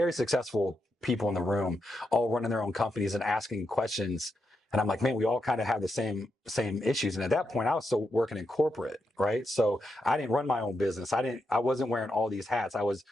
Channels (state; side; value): normal; both; correlation 0.84